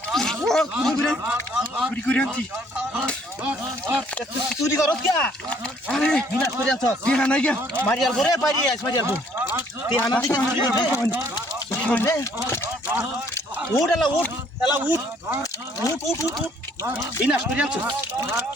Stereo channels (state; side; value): normal; both; correlation 0.63